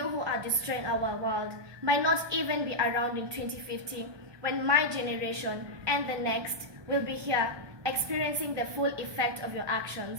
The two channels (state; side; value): late; left; 1.2 ms